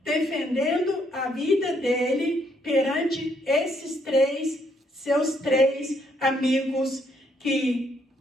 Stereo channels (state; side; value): normal; both; correlation 0.71